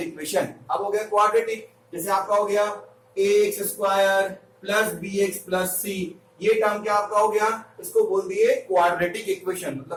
इक्वेशन। अब हो गया क्वाड्रेटिक, जैसे आपका हो गया ax square plus bx plus c, ये टर्म क्या आपका हो गया, इसको बोल दिए क्वाड्रेटिक इक्वेशन।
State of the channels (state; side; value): identical; both; correlation 1.00